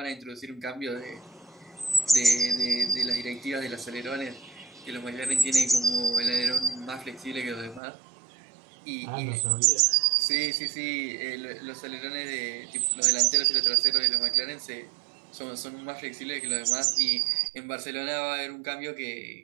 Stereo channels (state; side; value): drops out; left; at 7.8 s